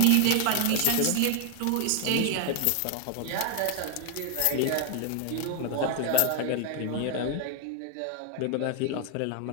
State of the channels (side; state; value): both; different; correlation 0.01